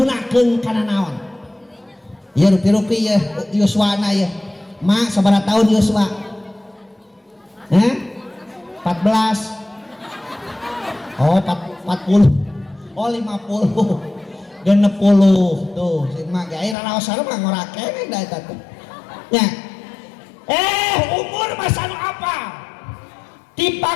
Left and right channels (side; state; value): right; drops out; at 16.8 s